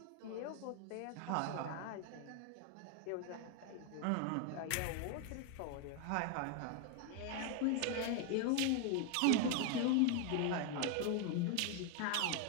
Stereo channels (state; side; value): different; both; correlation 0.01